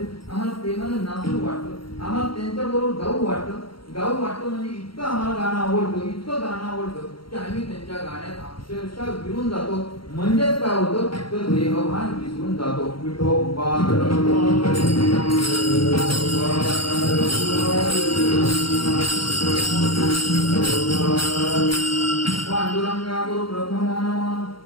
आम्हाला प्रेमानं नाचू वाटतं, आम्हाला त्यांच्याबरोबर गाऊ वाटतं. गाऊ वाटतं म्हणजे इतकं आम्हाला गाणं आवडतं, इतकं गाणं आवडतं की आम्ही त्यांच्या गाण्यात अक्षरशः विरून जातो. म्हणजेच काय होतं, तर देहभान विसरून जातो. विठोबा पांडुरंगा गुरु प्रथम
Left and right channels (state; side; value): late; right; 0.73 ms